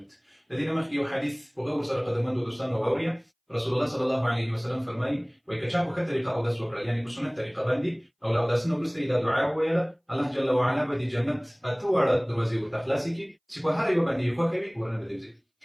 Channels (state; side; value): identical; both; correlation 1.00